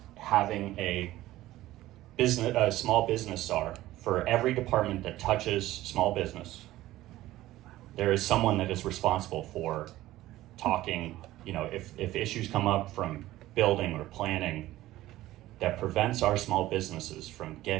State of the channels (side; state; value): left; quieter; 15.8 dB